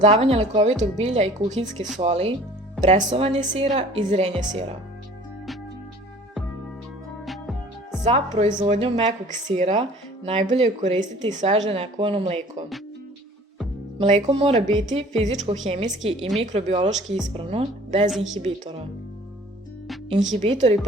lekovitog bilja i kuhinjske soli, presovanje sira i zrenje sira. Za proizvodnju mekog sira najbolje je koristiti sveže nekovano mleko. Mleko mora biti fizičko-hemijski i mikrobiološki ispravno, bez inhibitora. Inhibitori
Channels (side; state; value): both; normal; correlation 0.49